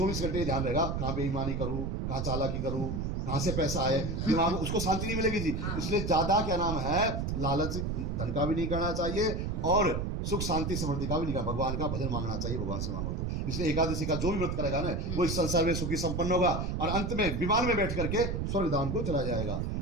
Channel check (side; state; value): right; noise; rumble, 1 dB below the sound